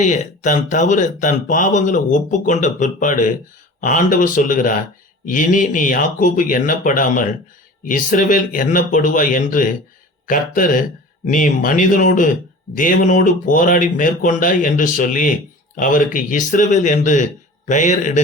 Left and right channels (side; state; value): both; normal; correlation 0.39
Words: தன் தவறு, தன் பாவங்களை ஒப்புக்கொண்ட பிற்பாடு ஆண்டவர் சொல்லுகிறார், இனி நீ யாக்கோபு எண்ணப்படாமல் இஸ்ரவேல் எண்ணப்படுவாய் என்று கர்த்தர் நீ மனிதனோடு தேவனோடு போராடி மேற்கொண்டாய் என்று சொல்லி அவருக்கு இஸ்ரவேல் என்று பெயர்